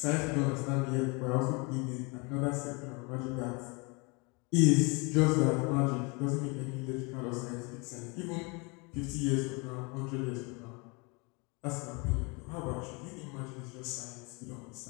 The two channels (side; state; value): right; quieter; 29.9 dB